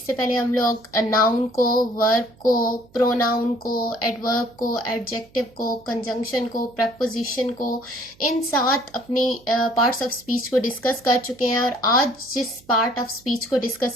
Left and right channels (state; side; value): noise; right; hum, 29 dB below the sound